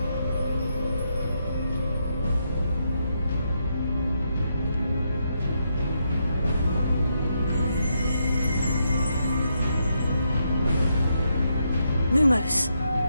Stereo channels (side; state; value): both; inverted; correlation -0.80